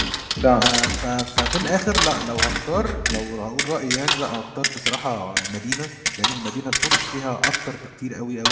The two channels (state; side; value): identical; both; correlation 1.00